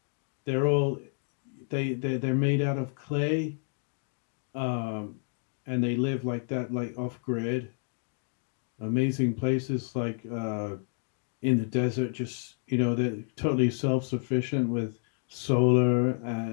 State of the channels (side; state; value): right; silent; digital silence